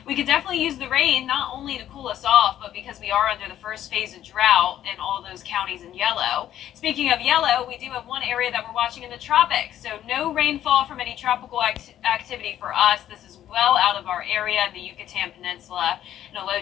We could definitely use the rain, not only to cool us off, but because we are under the first phase of drought in all those counties in yellow. Speaking of yellow, we do have one area that we're watching in the tropics. So no rainfall from any tropical activity for us. This is well out of our area in the Yucatan Peninsula, and a low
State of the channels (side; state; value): right; quieter; 11.6 dB